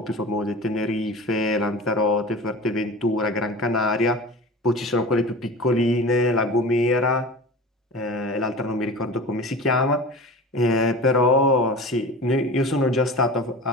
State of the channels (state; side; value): normal; both; correlation 0.35